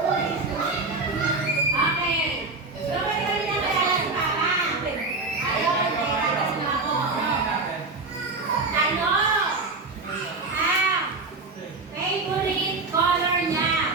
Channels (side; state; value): left; quieter; 3.6 dB